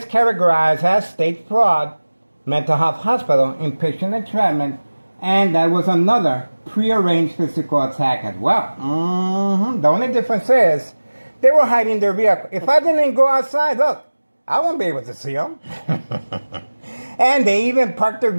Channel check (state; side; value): inverted; both; correlation -1.00